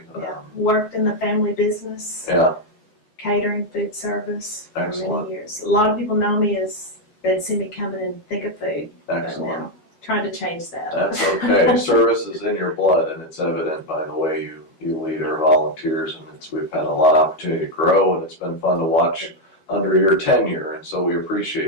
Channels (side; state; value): right; late; 12 ms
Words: Yeah. Worked in the family business. Yeah. Catering, food service for Excellent. many years. A lot of people know me as they'd see me coming and think of food. Excellent. But now, trying to change that. That's okay. Service is in your blood, and it's evident by the way you lead our volunteers, and we've had a lot of opportunity to grow, and it's been fun to watch under your tenure, and so we